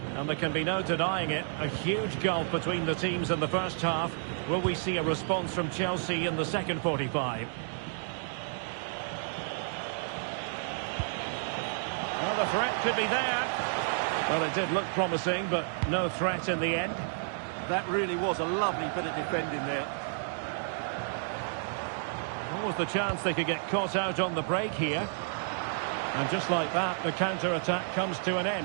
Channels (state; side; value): silent; left; digital silence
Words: and there can be no denying it. A huge gulf between the teams in the first half. Will we see a response from Chelsea in the second 45? Well, the threat could be there. Well, it did look promising, but no threat in the end. That really was a lovely bit of defending there. What was the chance they could get caught out on the break here? And just like that, the counter-attack comes to an